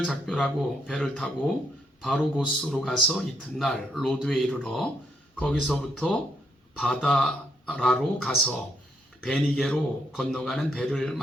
작별하고 배를 타고 바로 고스로 가서 이튿날 로드에 이르러 거기서부터 바다라로 가서 베니게로 건너가는 배를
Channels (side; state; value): both; normal; correlation 0.75